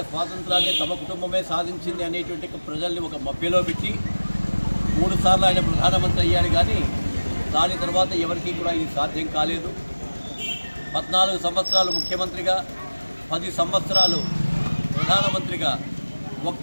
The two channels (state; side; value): inverted; both; correlation -1.00